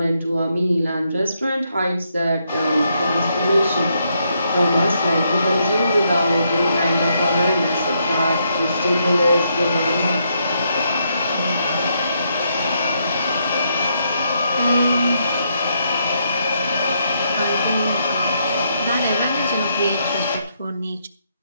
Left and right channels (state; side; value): inverted; both; correlation -0.77